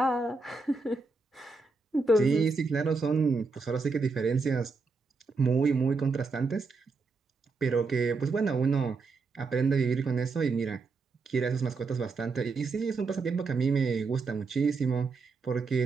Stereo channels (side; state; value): left; quieter; 4.2 dB